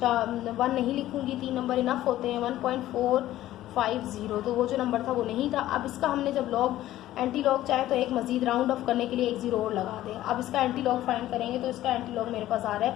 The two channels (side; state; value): right; quieter; 14.3 dB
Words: नहीं लिखूंगी, 3 नंबर इनफ होते हैं। 1.450 तो वो जो नंबर था वो नहीं था। अब इसका हमने जब लॉग एंटी लॉग चाहे तो एक मजीद राउंड ऑफ करने के लिए एक 0 और लगा दें। अब इसका एंटी लॉग फाइंड करेंगे तो इसका एंटी लॉग मेरे पास आ रहा है